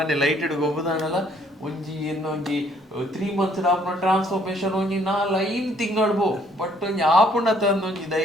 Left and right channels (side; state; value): both; normal; correlation 0.64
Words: ಲೈಟೆಡ್ ಗೊಬ್ಬದಾನಲ್ಲ ಒಂಜಿ ಇನ್ನೊಂಜಿ 3 months ಆಪುನ ಟ್ರಾನ್ಸ್ಫಾರ್ಮೇಶನ್ ಒಂಜಿ 4-5 ತಿಂಗಳು ಬೋ ಬಟ್ ಒಂಜಿ ಆಪುಂಡ ತಂದು ಒಂಜಿ